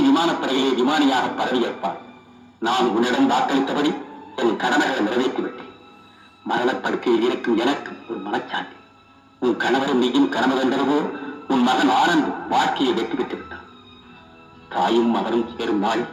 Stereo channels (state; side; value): identical; both; correlation 1.00